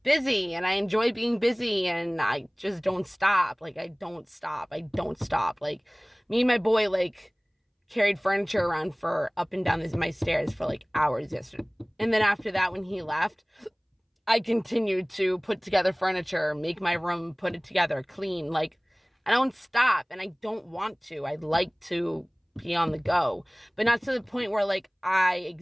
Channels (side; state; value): both; identical; correlation 1.00